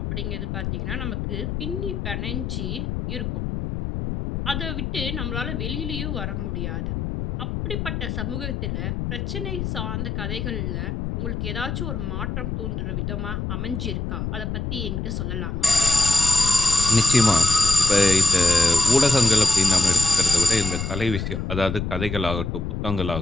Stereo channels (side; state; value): left; noise; rumble, 4 dB below the sound